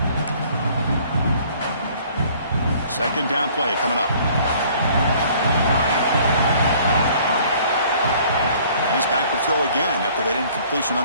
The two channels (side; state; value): both; inverted; correlation -0.56